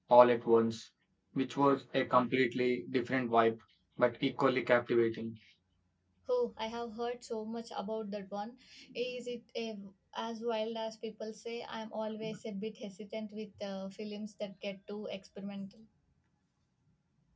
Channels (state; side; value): identical; both; correlation 1.00